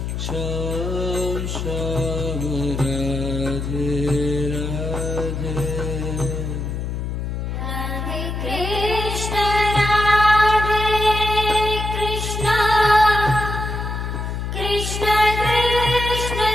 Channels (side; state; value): left; noise; hum, 4 dB below the sound